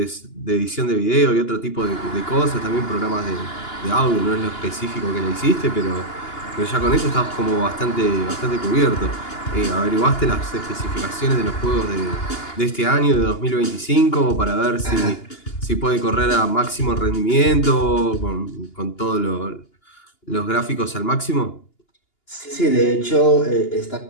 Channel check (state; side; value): late; right; 2.9 ms